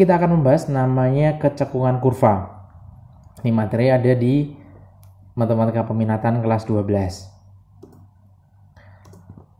akan membahas namanya kecekungan kurva. Ini materi ada di matematika peminatan kelas 12.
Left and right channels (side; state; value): both; identical; correlation 1.00